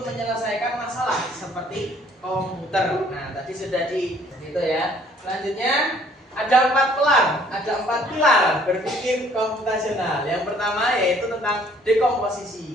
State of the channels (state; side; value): normal; both; correlation 0.59